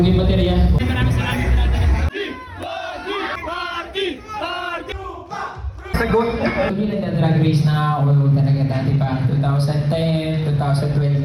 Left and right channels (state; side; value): identical; both; correlation 1.00